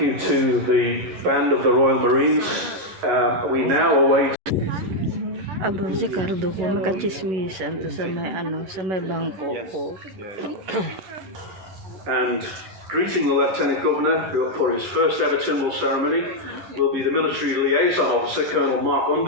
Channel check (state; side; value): late; left; 11 ms